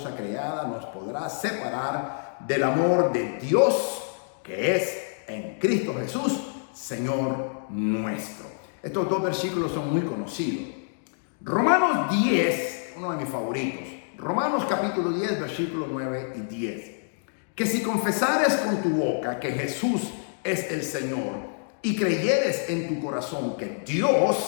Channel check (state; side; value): silent; right; digital silence